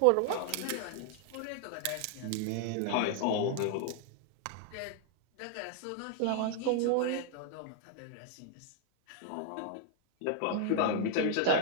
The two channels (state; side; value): different; both; correlation 0.00